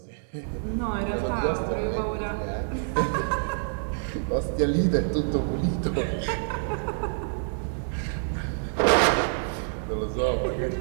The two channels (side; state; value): left; silent; 60 dB below the other